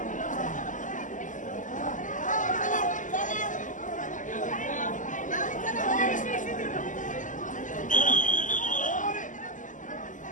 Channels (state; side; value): late; right; 0.37 ms